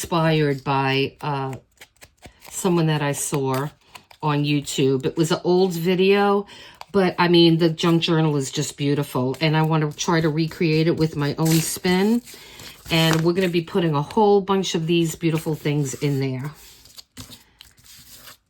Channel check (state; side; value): identical; both; correlation 1.00